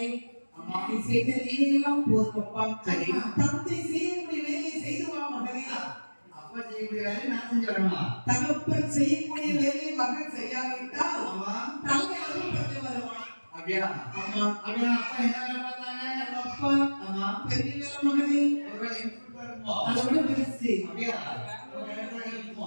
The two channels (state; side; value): inverted; both; correlation -1.00